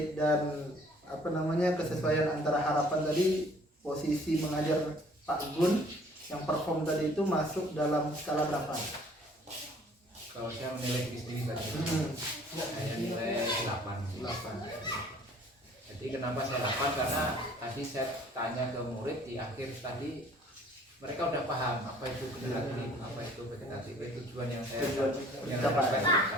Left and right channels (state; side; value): normal; both; correlation 0.55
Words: dan kesesuaian antara harapan tadi, posisi mengajar Pak Gun yang perform tadi itu masuk dalam skala berapa? Kalau saya menilai diri sendiri tadi, saya nilai 8. Jadi kenapa saya 8? tadi saya tanya ke murid di akhir tadi, mereka udah paham apa itu generatif, apa itu vegetatif, tujuan yang saya capai.